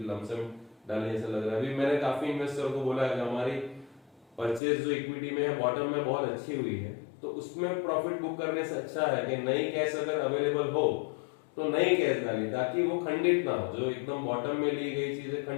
लमसम डालने जैसा लग रहा है। अभी मैंने काफी इन्वेस्टर को बोला है कि हमारी परचेज जो इक्विटी में है बॉटम में बहुत अच्छी हुई है, तो उसमें प्रॉफिट बुक करने से अच्छा है कि नई कैश अगर अवेलेबल हो तो नई कैश डाली, ताकि वो खंडित ना हो, जो एकदम बॉटम में ली गई चीजें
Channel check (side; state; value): right; drops out; at 4.6 s